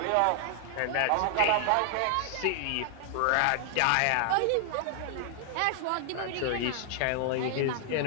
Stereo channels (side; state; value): both; different; correlation 0.00